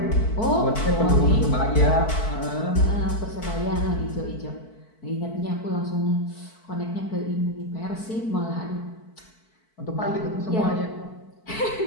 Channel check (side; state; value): right; late; 4.5 ms